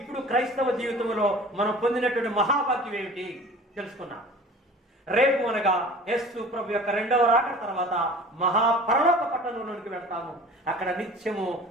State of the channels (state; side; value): normal; both; correlation 0.43